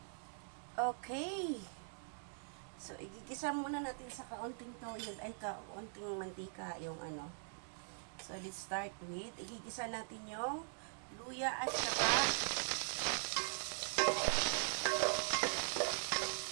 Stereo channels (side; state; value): left; silent; digital silence